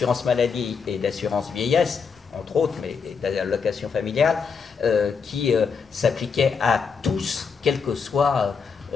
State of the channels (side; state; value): right; quieter; 5.7 dB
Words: maladie et d'assurance vieillesse, entre autres, mais d'allocation familiale, qui s'appliquait à tous, quelle que soit